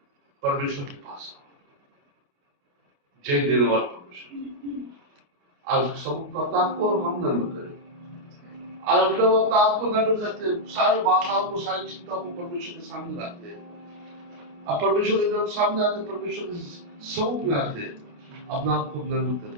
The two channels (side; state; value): left; late; 28 ms